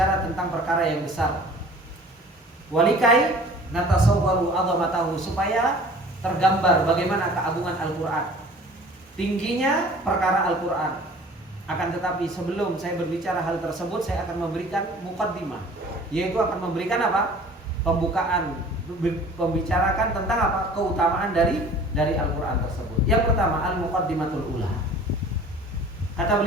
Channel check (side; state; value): both; normal; correlation 0.47